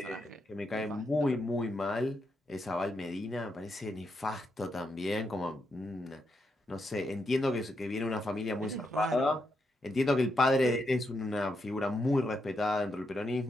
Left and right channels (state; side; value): normal; both; correlation 0.82